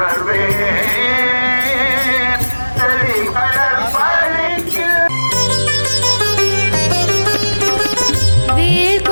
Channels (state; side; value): inverted; both; correlation -1.00